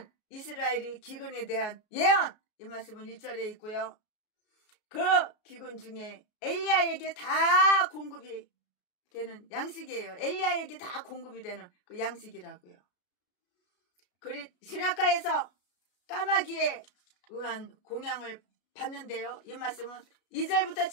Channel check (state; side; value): late; right; 33 ms